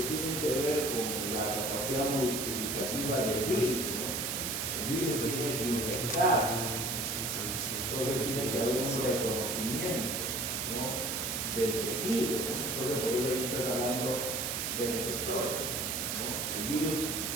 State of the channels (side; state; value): right; noise; hiss, 1 dB below the sound